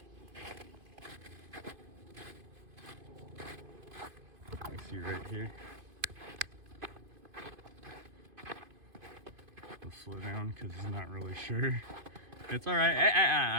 I see right here. slow down because he's not really sure. It's all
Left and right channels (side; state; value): left; late; 2.5 ms